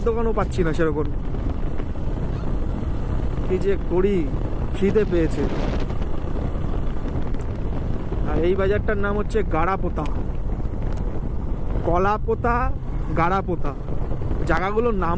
দোকানও পাচ্ছি না সেরকম। কি যে করি, খিদে পেয়েছে। আর এই বাজারটার নাম হচ্ছে গাড়াপোতা, কলাপোতা, গাড়াপোতা। জায়গাগুলোর নাম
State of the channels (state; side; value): identical; both; correlation 1.00